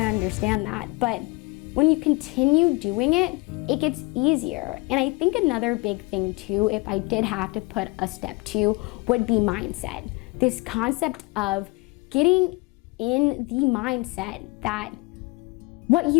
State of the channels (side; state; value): right; quieter; 25.8 dB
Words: understand that, but when you continue doing it, it gets easier. And I think another big thing too, if I did have to put a step two, would be mindset. This concept of getting in the mindset that what